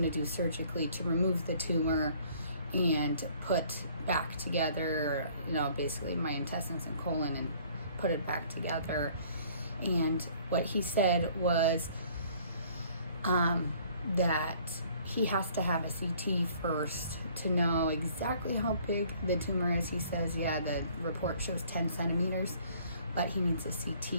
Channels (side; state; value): both; inverted; correlation -0.57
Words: to do surgically to remove the tumor and put back together, basically my intestines and colon, and put it back together. And what he said was that he has to have a CT first to know exactly how big the tumor is. He says, yeah, the report shows 10 centimeters, but he needs a